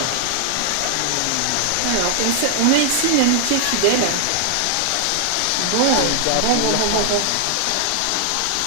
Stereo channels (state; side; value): different; both; correlation 0.00